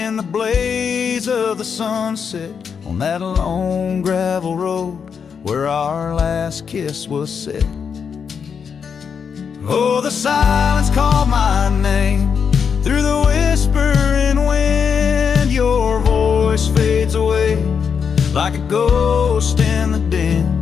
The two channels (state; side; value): quieter; right; 6.6 dB